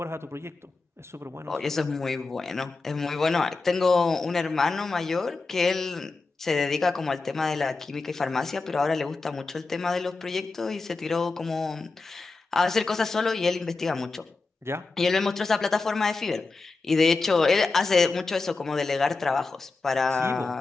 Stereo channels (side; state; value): right; quieter; 3.8 dB